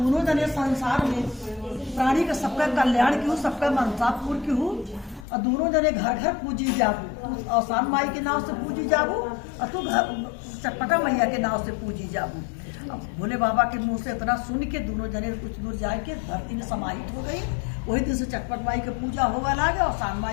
जने संसार में प्राणी का सबका कल्याण की हूँ, सबका मनसा पूर्ण की हूँ, और दोनों जने घर घर पूजी जाबू। तू आसान माई के नाव से पूजी जाबू और तू चटपटा मैया के नाव से पूजी जाबू। अब भोले बाबा के मुंह से इतना सुन के दोनों जने कुछ दूर जाए के धरती में समाहित हो गई। वही दिन से चटपट माई की पूजा होगा लागे और आसान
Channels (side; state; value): right; drops out; at 5.2 s